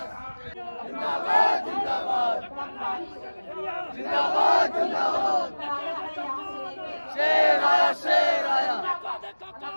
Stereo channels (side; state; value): both; inverted; correlation -1.00